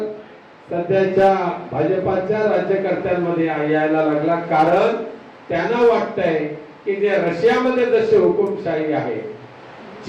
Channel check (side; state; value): both; identical; correlation 1.00